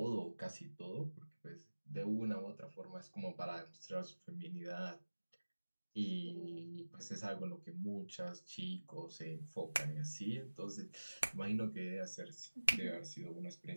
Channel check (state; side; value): inverted; both; correlation -1.00